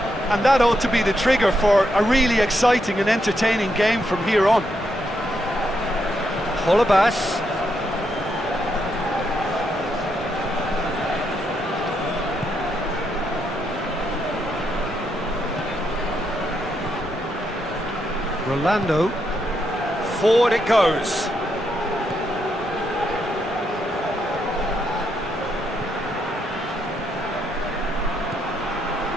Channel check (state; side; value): normal; both; correlation 0.79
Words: And that ought to be the trigger for a really exciting and entertaining game from here on. Holebas. Rolando. Forward it goes.